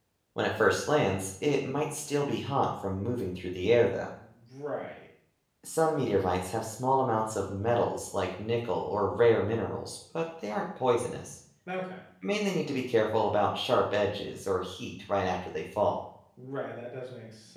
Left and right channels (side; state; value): both; identical; correlation 1.00